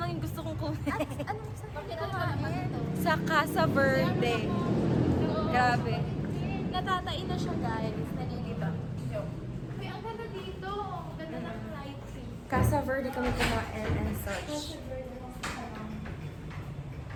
lang yung gusto kong kunin. Anong sa kumain? Sa Casa Verde. Grabe. Natatain na siya, guys. Nalilibang. May ang ganda dito. Ganda ng lighting. Casa Verde kami kumain and such.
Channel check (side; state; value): both; identical; correlation 1.00